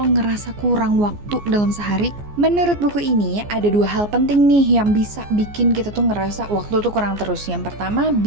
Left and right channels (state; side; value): late; left; 14 ms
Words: ngerasa kurang waktu dalam sehari? Menurut buku ini, ada dua hal penting nih yang bisa bikin kita tuh ngerasa waktu tuh kurang terus. Yang pertama,